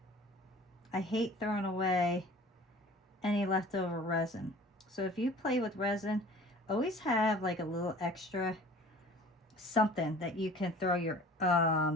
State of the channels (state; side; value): normal; both; correlation 0.46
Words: I hate throwing away any leftover resin. So if you play with resin, always have like a little extra something that you can throw your